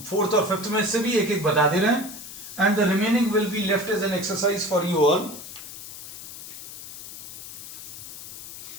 4th और 5th में से भी एक एक बता दे रहे हैं। And the remaining will be left as an exercise for you all.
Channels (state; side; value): noise; left; hiss, 12 dB below the sound